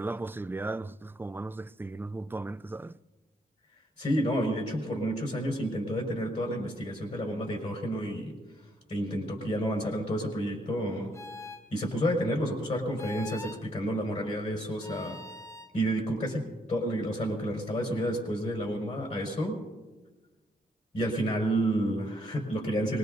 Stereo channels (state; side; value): normal; both; correlation 0.72